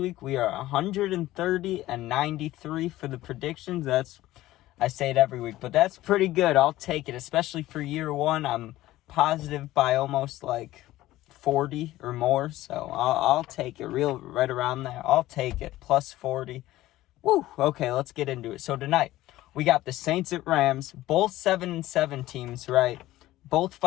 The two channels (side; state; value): right; quieter; 15.9 dB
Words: we are 130 and 93 for the predictions. I say it every week, but that's pretty good. I'll take it, especially for year one. I'm positive by almost like 40 or more, so I'll take it right around there. I'll take it, plus 40. Woo! Okay, let's get into it. So tonight, we got the Saints at Rams, both 7-7 teams, right? Both